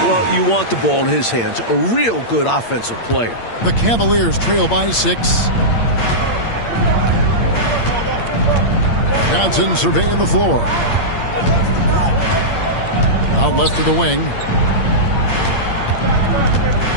you want the ball in his hands. A real good offensive player. The Cavaliers trail by 6. Johnson surveying the floor. Out left to the wing.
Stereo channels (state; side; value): late; right; 8.7 ms